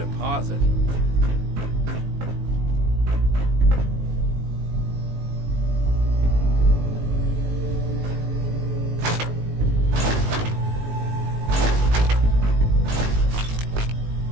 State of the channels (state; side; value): late; left; 19 ms